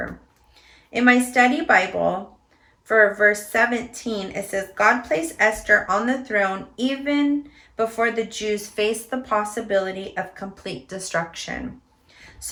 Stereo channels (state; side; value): identical; both; correlation 1.00